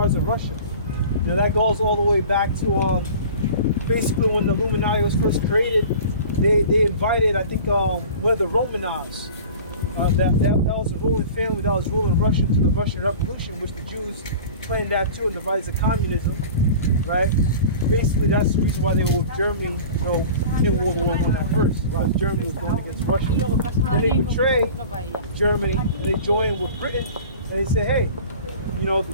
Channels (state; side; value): inverted; both; correlation -0.40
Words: of Russia. You know, that goes all the way back to basically when the Illuminati was first created. They invited, I think, one of the Romanovs. That was a ruling family that was ruling Russia to the Russian Revolution, which the Jews planned that too and devised communism, right? Basically, that's the reason why they were with Germany, you know, in World War I at first. Because Germany was going against Russia. Then they betrayed Germany, and they joined with Britain, and they say, hey, you know,